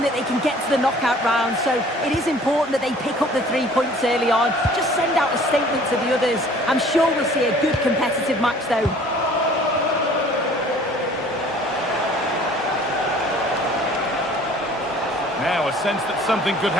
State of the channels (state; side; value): normal; both; correlation 0.51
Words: that they can get to the knockout round, so it is important that they pick up the 3 points early on. Just send out a statement to the others. I'm sure we'll see a good competitive match, though. Now a sense that something could